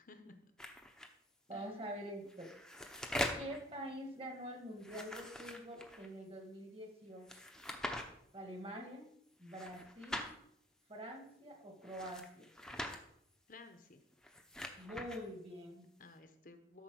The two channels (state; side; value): normal; both; correlation 0.56